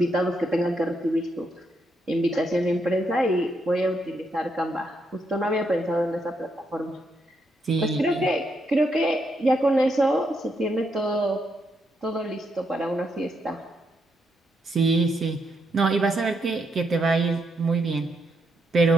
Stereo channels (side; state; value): both; normal; correlation 0.79